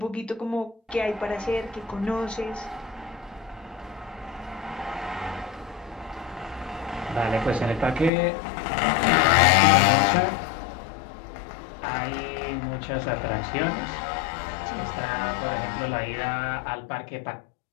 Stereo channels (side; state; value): right; drops out; at 8.1 s